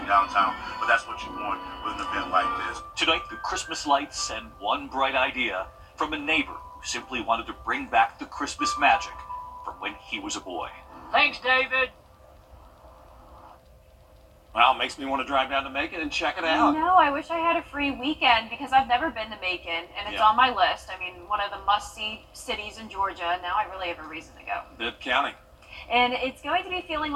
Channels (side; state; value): both; identical; correlation 1.00